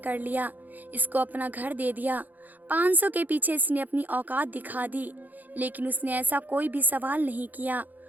लिया, इसको अपना घर दे दिया। 500 के पीछे इसने अपनी औकात दिखा दी, लेकिन उसने ऐसा कोई भी सवाल नहीं किया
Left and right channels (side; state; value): left; late; 0.083 ms